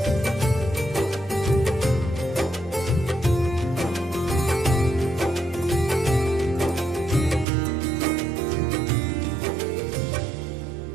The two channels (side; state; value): left; drops out; at 7.5 s